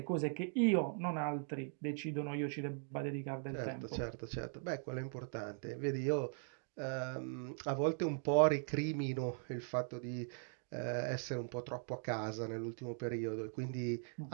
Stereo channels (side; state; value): left; silent; 51 dB below the other